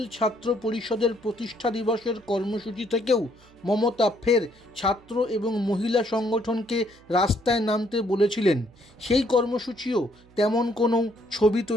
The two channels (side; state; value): right; noise; hum, 28 dB below the sound